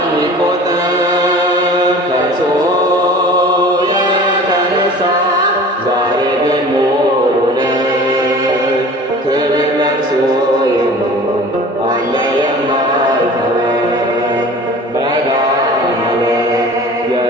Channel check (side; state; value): both; normal; correlation 0.42